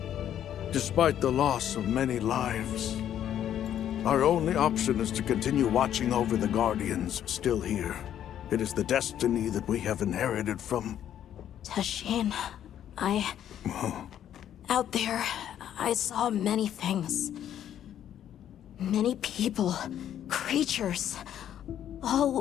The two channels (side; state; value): right; quieter; 10.5 dB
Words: Despite the loss of many lives, our only option is to continue watching over the Guardians still here. It is the destiny that we have inherited from... Tashin, out there, I saw many things. Many people, creatures, all